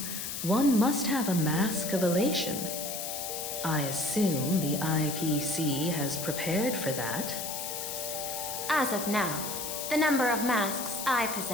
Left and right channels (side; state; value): left; noise; hiss, 5 dB below the sound